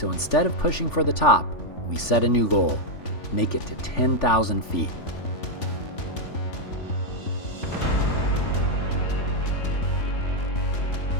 instead of pushing for the top, we set a new goal: make it to 10,000 feet.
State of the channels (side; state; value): right; late; 3.4 ms